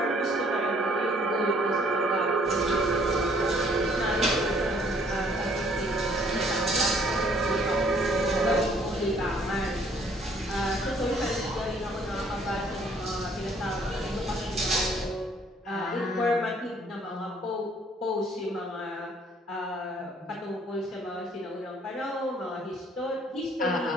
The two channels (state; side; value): normal; both; correlation 0.61